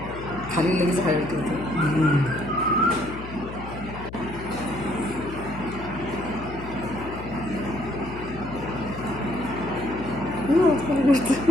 खाली लगेच हळद ठेवते.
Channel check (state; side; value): noise; left; hum, 11 dB below the sound